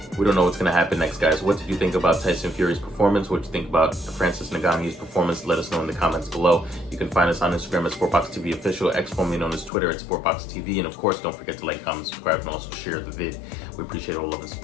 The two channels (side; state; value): right; drops out; at 9.7 s